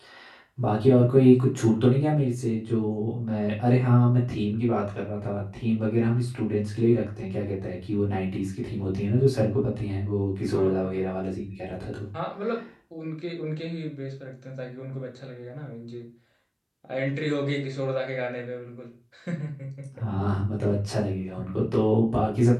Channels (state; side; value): identical; both; correlation 1.00